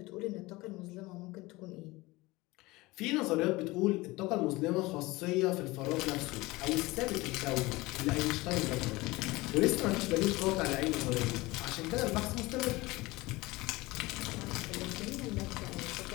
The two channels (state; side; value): quieter; right; 21.2 dB